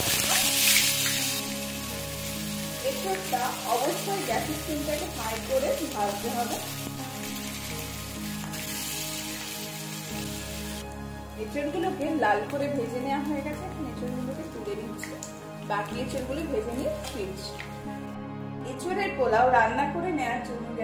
এঁচড়টা অবশ্যই গ্যাসের ফ্লেমটাকে হাই করে ভাজতে হবে। এঁচড়গুলোকে লাল করে ভেজে নেওয়া হয়ে গেছে। এখন এঁচড়গুলোকে তুলে নিচ্ছি, বাকি এঁচড়গুলো ভেজে নিয়ে ফিরছি। এঁচড়ের পোলাও রান্না করে নেওয়ার জন্য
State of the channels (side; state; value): both; identical; correlation 1.00